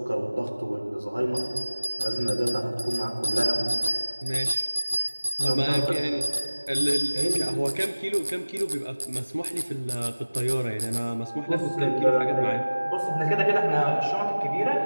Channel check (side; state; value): both; inverted; correlation -1.00